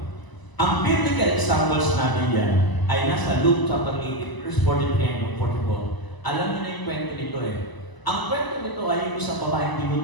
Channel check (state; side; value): late; right; 1.0 ms